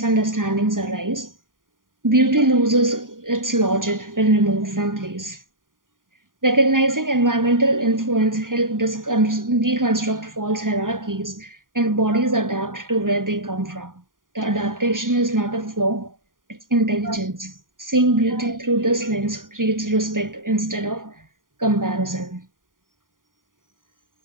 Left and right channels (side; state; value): left; late; 0.90 ms